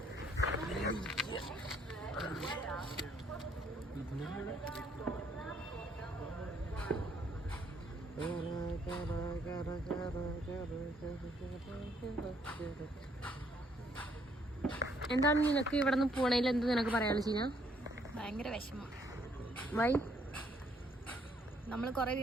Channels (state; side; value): normal; both; correlation 0.68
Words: എന്താണ് നിനക്ക് ഇവിടെ നിന്ന് പോണേൽ എന്ത് നിനക്ക് പറയാനുള്ള ചീന? ഭയങ്കര വിഷമം. വൈ? നമ്മള് കൊറേ